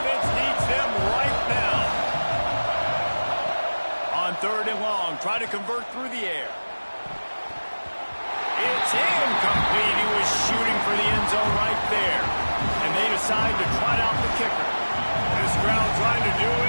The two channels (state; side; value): inverted; both; correlation -1.00